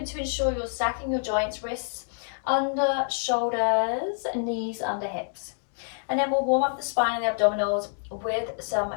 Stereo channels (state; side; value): silent; right; digital silence